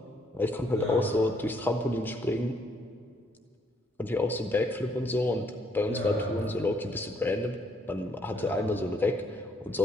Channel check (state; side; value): normal; both; correlation 0.69